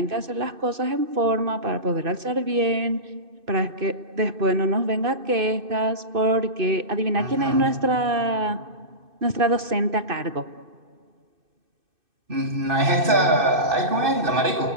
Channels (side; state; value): left; late; 2.6 ms